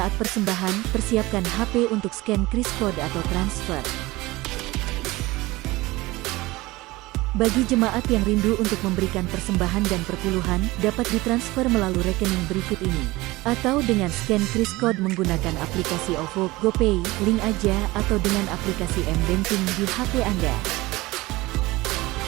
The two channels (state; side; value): quieter; left; 20.4 dB